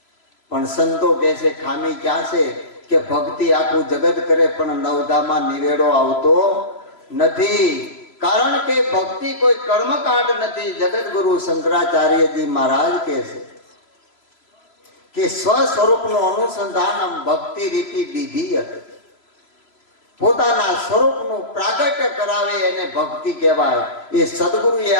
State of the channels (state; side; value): late; right; 3.0 ms